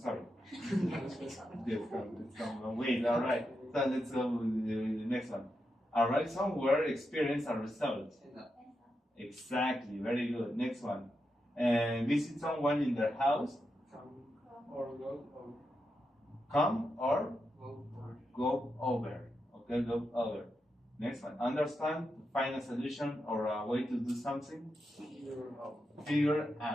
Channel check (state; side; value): normal; both; correlation 0.86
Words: sorry. Yes, calm down. Wait, alright. So let's go with the next one. Arrive somewhere, experience a result. Exactly, very good. Next one. Visit someone in their house. Come or go over. Okay, go over. Next one. Understand, find a solution or a way to do something. Figure